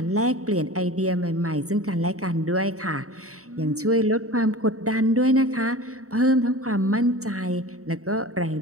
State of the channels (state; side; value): late; left; 0.65 ms